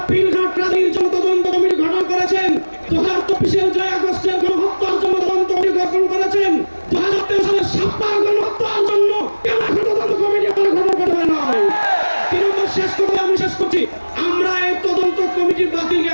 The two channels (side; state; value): both; inverted; correlation -1.00